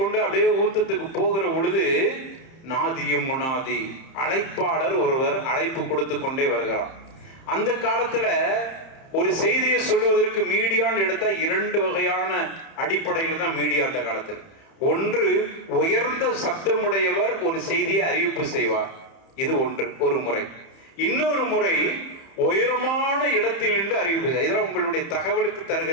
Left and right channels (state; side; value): late; right; 30 ms